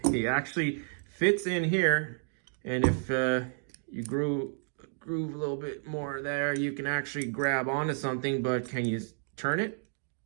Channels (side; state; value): left; silent; digital silence